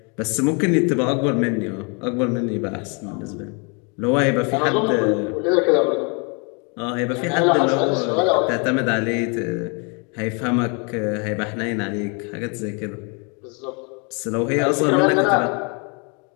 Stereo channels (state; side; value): quieter; right; 34.5 dB